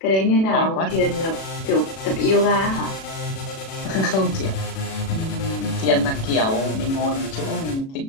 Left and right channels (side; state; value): right; late; 37 ms